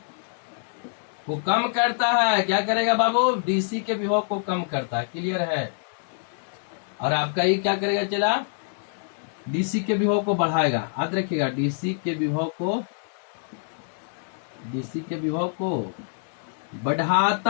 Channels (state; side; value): silent; right; digital silence